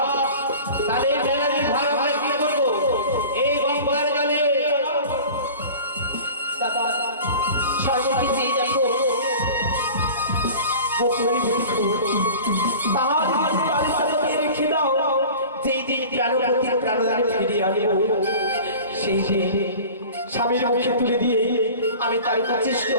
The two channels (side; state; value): both; inverted; correlation -0.40